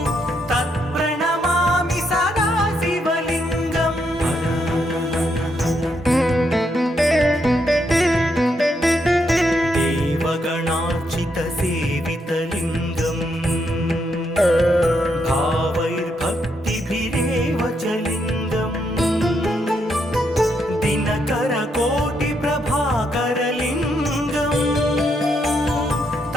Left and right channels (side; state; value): both; normal; correlation 0.78